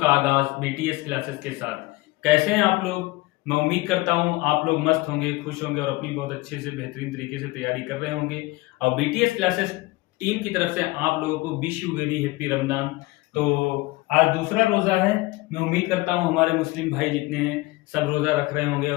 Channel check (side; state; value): right; quieter; 21.3 dB